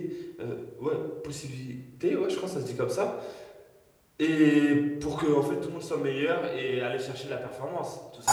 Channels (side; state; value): both; identical; correlation 1.00